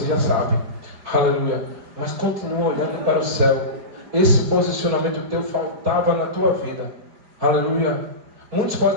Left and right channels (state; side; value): late; left; 4.9 ms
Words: já sabe. Aleluia. Mas continua olhando para o céu. Esse posicionamento teu faltava na tua vida. Aleluia. Muitos